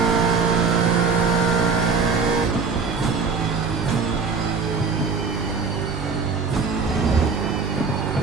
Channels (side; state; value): left; quieter; 5.0 dB